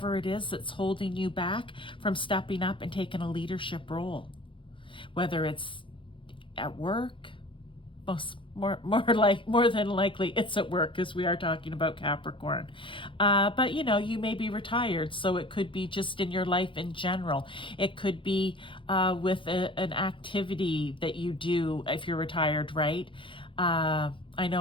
it is that's holding you back from stepping up and taking a leadership role. Whether it's at work, more than likely it's at work, because we are talking about Capricorn. But you know, you may be retired, so it could be just in your life in general. It could be with an activity that you do if you're retired, right? I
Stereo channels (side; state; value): right; late; 0.25 ms